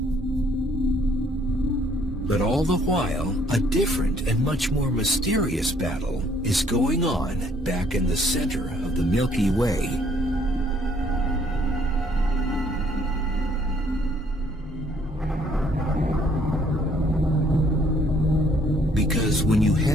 But all the while, a different and much more mysterious battle is going on back in the center of the Milky Way. Because when you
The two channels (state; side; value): normal; both; correlation 0.63